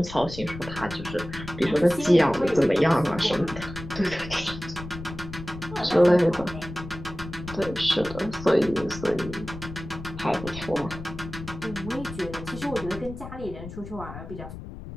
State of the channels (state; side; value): noise; left; rumble, 11 dB below the sound